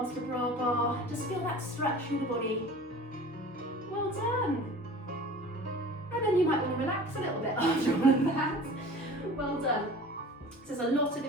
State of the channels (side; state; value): both; normal; correlation 0.41